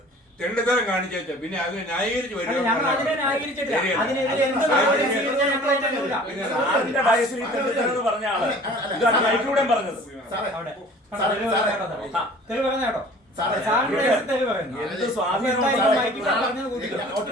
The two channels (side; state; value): both; normal; correlation 0.47